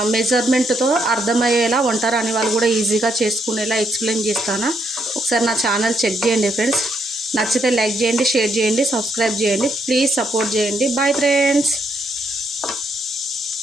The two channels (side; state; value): both; normal; correlation 0.76